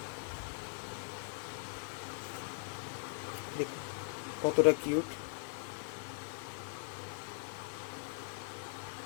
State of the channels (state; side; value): silent; right; 51 dB below the other